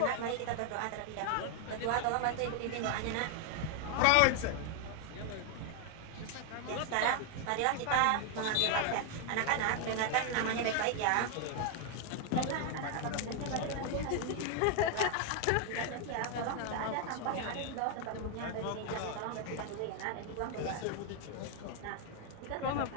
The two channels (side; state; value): both; different; correlation 0.00